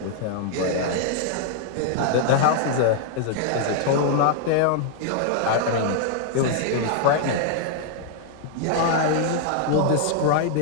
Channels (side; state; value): both; different; correlation -0.01